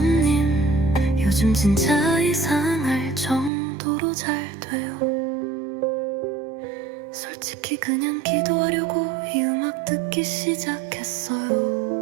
요즘 진짜 이상할 정도로 잘 돼요. 솔직히 그냥 기도하려고 이 음악 듣기 시작했어요.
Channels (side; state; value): left; drops out; at 3.5 s